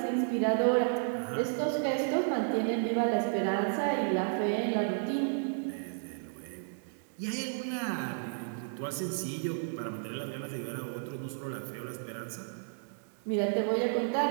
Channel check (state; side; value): silent; left; digital silence